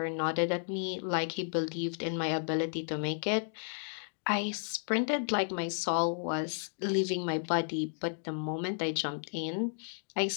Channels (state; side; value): silent; right; digital silence